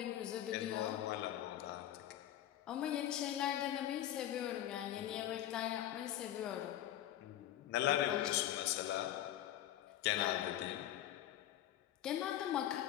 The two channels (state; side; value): quieter; right; 12.3 dB